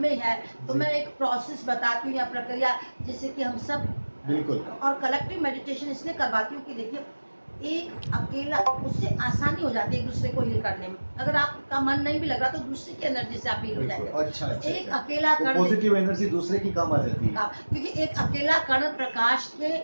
में है। तो मैं एक प्रोसेस बताती हूँ या प्रक्रिया, जिससे कि हम सब, बिल्कुल, और कलेक्टिव मेडिटेशन इसलिए करवाती हूँ कि देखिए, एक अकेला, उससे आसानी हो जाती है एक दूसरे को हील करने में। अगर आपका मन नहीं भी लग रहा तो दूसरे की एनर्जी से आप हील हो जाएंगे। अच्छा, तो एक अकेला कण, पॉजिटिव एनर्जी दूसरे की काम आ जाती है, क्योंकि एक अकेला कण प्रकाश के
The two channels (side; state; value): both; inverted; correlation -1.00